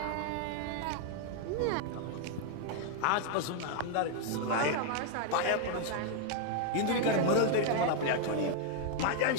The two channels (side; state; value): both; different; correlation 0.00